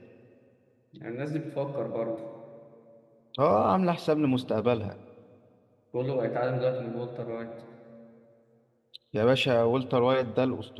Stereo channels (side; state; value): both; identical; correlation 1.00